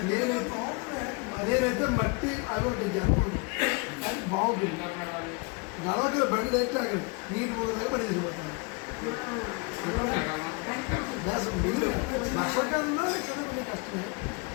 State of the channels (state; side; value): quieter; right; 30.5 dB